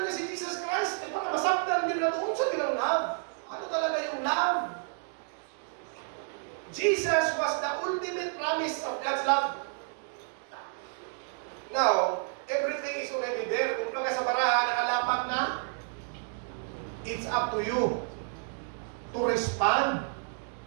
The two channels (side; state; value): left; silent; 57 dB below the other